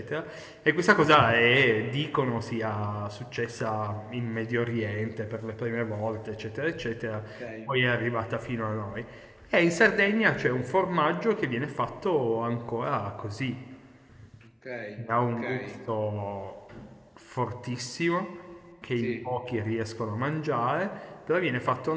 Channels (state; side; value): identical; both; correlation 1.00